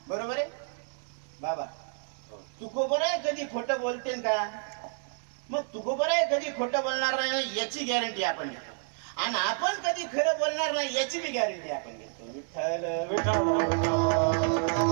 बरोबर आहे बाबा? तुकोबराय कधी खोटं बोलते का? मग तुकोबराय कधी खोटं बोलणार नाही याची गॅरंटी आपण घेतो आणि आपण कधी खरं बोलणार नाही याची बी गॅरंटी आपण घेतो. विठ्ठल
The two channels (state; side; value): silent; left; 58 dB below the other